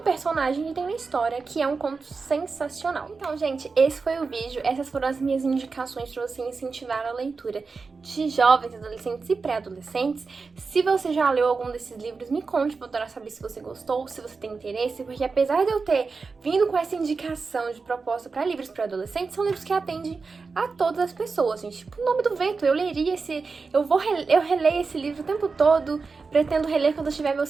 que tem uma história, que é um conto sensacional. Então, gente, esse foi o vídeo. Essas foram as minhas indicações para você incentivar a leitura de jovens, adolescentes e pré-adolescentes. Se você já leu algum desses livros, me conte, pra eu adorar saber se você gostou, se você tem interesse, porque apesar de eu ter vindo com essa indicação de proposta para livros para adolescentes, são livros que atendem a todas as pessoas, gente. Tipo, O Nome do Vento, eu leria eu releio esse livro o tempo todo, pretendo reler quando eu tiver meus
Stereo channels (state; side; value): quieter; left; 4.5 dB